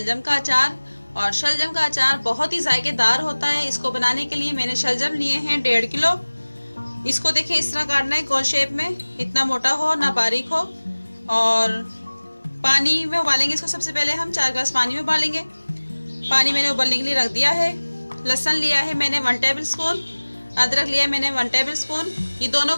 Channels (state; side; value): inverted; both; correlation -1.00